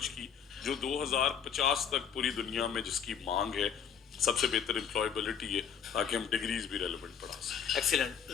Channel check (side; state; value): right; quieter; 7.7 dB